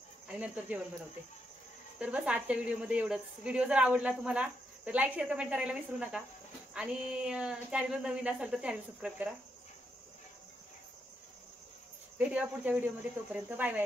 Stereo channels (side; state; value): both; normal; correlation 0.80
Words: आणि नंतर जेवण बनवते. तर बस आजच्या व्हिडिओमध्ये एवढंच. व्हिडिओ जर आवडला तुम्हाला तर लाईक शेअर कमेंट करायला विसरू नका आणि चॅनलवर नवीन असाल तर चॅनल सबस्क्राईब करा. भेटूया पुढच्या व्हिडिओमध्ये. तोपर्यंत बाय